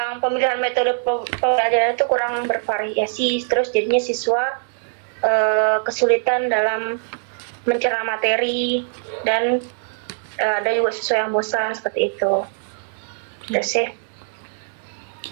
pemilihan metode pembelajaran itu kurang bervariasi, terus jadinya siswa kesulitan dalam mencerna materi dan ada juga siswa yang bosan seperti itu. Itu sih.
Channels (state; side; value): silent; left; digital silence